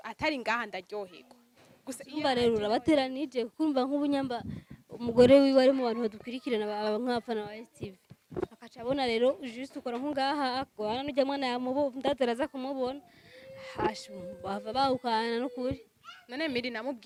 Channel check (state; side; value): identical; both; correlation 1.00